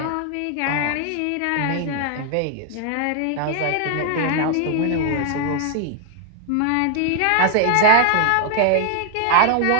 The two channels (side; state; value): both; different; correlation 0.00